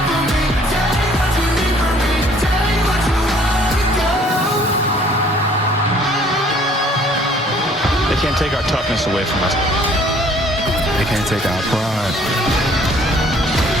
They can't take our toughness away from us. They can't take our pride.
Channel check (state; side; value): normal; both; correlation 0.58